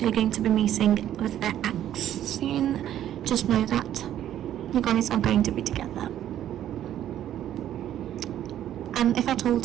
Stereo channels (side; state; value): left; quieter; 11.5 dB